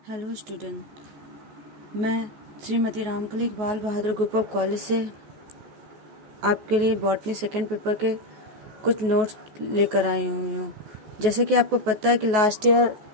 Hello student, मैं श्रीमती रामकली बाल बहादुर group of college से आपके लिए बॉटनी सेकेंड पेपर के कुछ नोट्स लेकर आई हुई हूँ। जैसे कि आपको पता है कि लास्ट ईयर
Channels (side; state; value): left; late; 14 ms